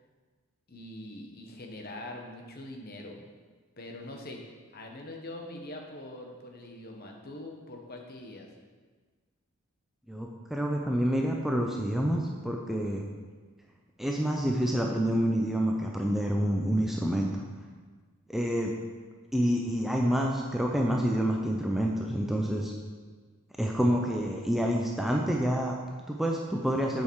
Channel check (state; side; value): normal; both; correlation 0.86